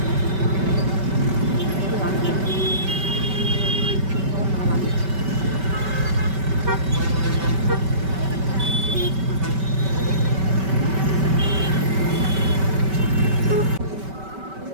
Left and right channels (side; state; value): left; late; 5.2 ms